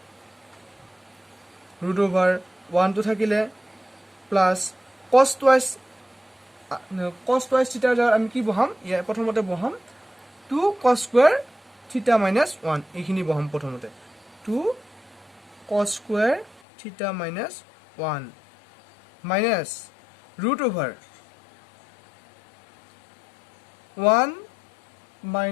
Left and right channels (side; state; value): right; drops out; at 16.6 s